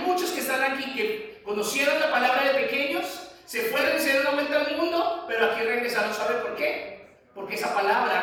que están aquí que conocieron la palabra de pequeños, se fueron y se dieron vuelta al mundo, pero aquí regresaron. ¿Sabe por qué? Porque esa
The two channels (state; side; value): identical; both; correlation 1.00